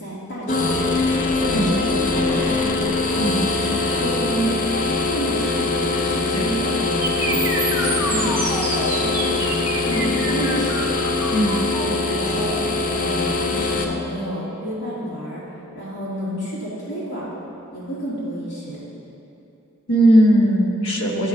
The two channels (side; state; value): both; normal; correlation 0.48